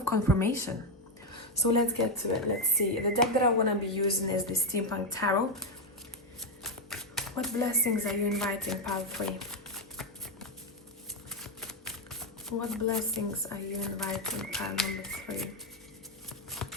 confirmation. So let's get to it. Let's see. The deck that I want to be using is the Steampunk Tarot. What blessings are you inviting, pile 3? What blessings are you inviting, pile number 3?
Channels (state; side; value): normal; both; correlation 0.05